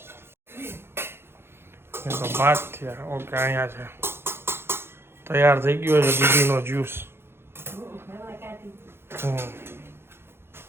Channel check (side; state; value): left; late; 0.11 ms